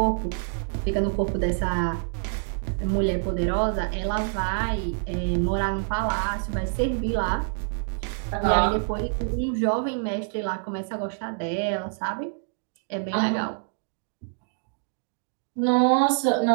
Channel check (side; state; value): left; silent; digital silence